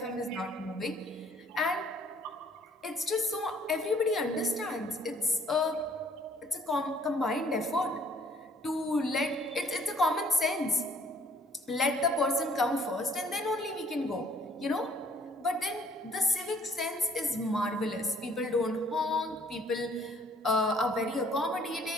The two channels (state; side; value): normal; both; correlation 0.60